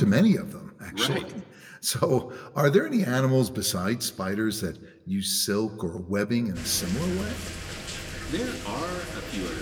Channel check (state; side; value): identical; both; correlation 1.00